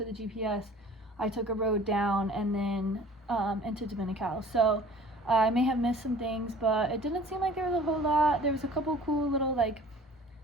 the GPS, I took a road down and then into Dominical. So I may have missed some things, but it didn't seem like there was a whole lot. There was a couple cool little like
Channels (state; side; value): normal; both; correlation 0.47